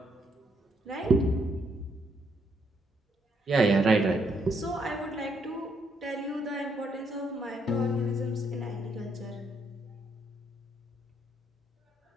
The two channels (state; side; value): normal; both; correlation 0.73